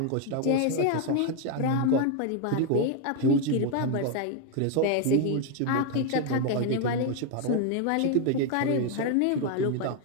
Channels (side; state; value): both; different; correlation 0.01